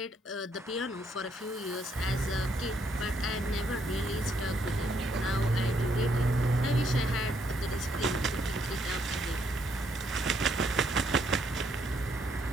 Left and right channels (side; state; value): both; normal; correlation 0.72